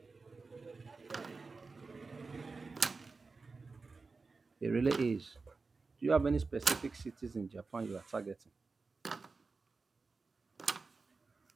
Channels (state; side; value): quieter; left; 4.1 dB